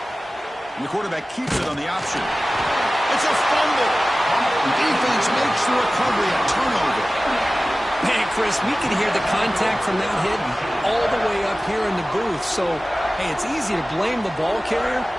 And the quarterback keeps it on the option. It's a fumble. The defense makes the recovery a turnover. Man, Chris, we can hear the contact from that hit all the way up here in the booth. So, hey, it's easy to blame the ball carrier,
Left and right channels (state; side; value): normal; both; correlation 0.97